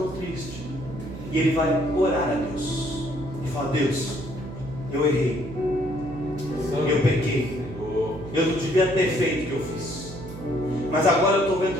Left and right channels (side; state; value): right; noise; hum, 12 dB below the sound